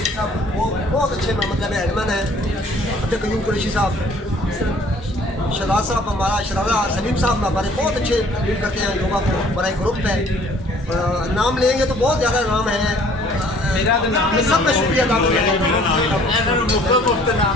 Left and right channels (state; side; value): normal; both; correlation 0.56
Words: साहब वो बहुत अच्छे मतलब एडमन है, अब्दुल कयूम कुरैशी साहब, शहजाद साहब हमारा शहजादा सलीम साहब हमारे बहुत अच्छे लीड करते हैं योगा को, बड़ा एक ग्रुप है। नाम लेंगे तो बहुत ज़्यादा नाम है, मैं सबका शुक्रिया अदा करता हूँ।